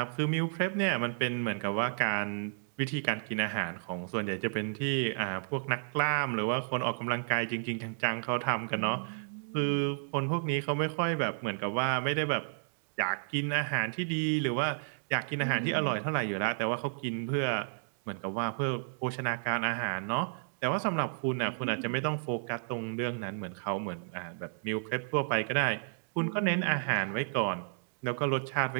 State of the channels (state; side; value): silent; left; digital silence